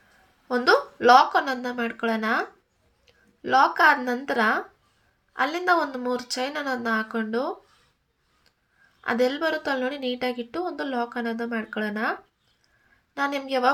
ಒಂದು ಲಾಕ್ ಅನ್ನೋದನ್ನ ಮಾಡ್ಕೊಳ್ಳೋಣ. ಲಾಕ್ ಆದ ನಂತರ ಅಲ್ಲಿಂದ ಒಂದು 3 ಚೈನ್ ಅನ್ನೋದನ್ನ ಹಾಕ್ಕೊಂಡು ಅದೆಲ್ಲಿ ಬರುತ್ತೋ ಅಲ್ಲಿ ನೋಡಿ ನೀಟಾಗಿಟ್ಟು ಒಂದು ಲಾಕ್ ಅನ್ನೋದನ್ನ ಮಾಡ್ಕೊಳ್ಳೋಣ. ನಾನು ನಿಮ್ಗೆ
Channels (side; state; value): both; identical; correlation 1.00